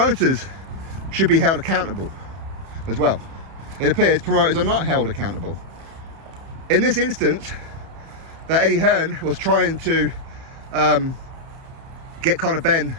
should be held accountable as well. It appears promoters are not held accountable. In this instance, that Eddie Hearn was trying to get Conor Benn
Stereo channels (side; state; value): left; late; 31 ms